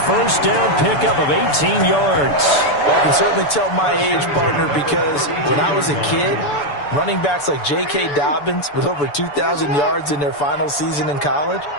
first down pickup of 18 yards. Well, I can certainly tell my age, partner, because when I was a kid, running backs like J.K. Dobbins with over 2,000 yards in their final season in college,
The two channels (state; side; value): late; right; 6.9 ms